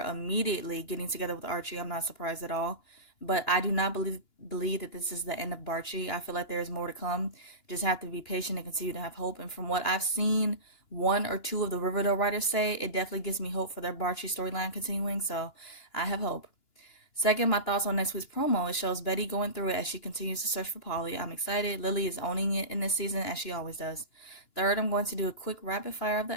immediately getting together with Archie, I'm not surprised at all. But I do not believe that this is the end of Barchi. I feel like there is more to come. Just have to be patient and continue to have hope. And from what I've seen 1 or 2 of the Riverdale writers say, it definitely gives me hope for their Barchi storyline continuing. So I have hope. Second, my thoughts on next week's promo. It shows Betty going through it as she continues to search for Polly. I'm excited. Lily is owning it in this season as she always does. Third, I'm going to do a quick rapid fire of the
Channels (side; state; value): right; late; 2.9 ms